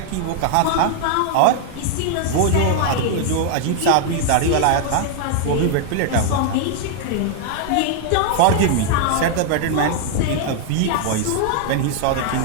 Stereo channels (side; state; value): both; different; correlation 0.00